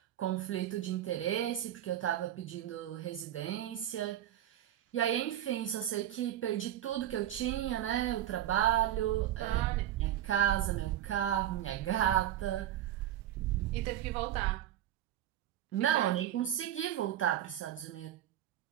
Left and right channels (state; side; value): quieter; left; 12.0 dB